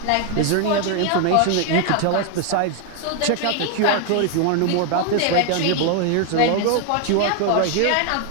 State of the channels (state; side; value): different; both; correlation 0.00